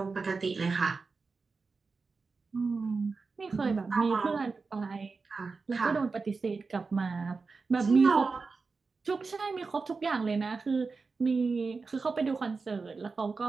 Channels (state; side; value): quieter; left; 4.4 dB